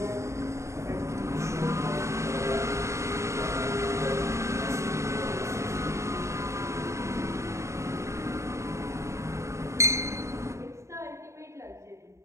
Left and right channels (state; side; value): late; left; 0.14 ms